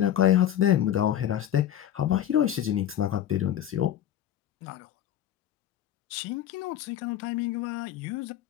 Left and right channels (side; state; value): right; quieter; 11.1 dB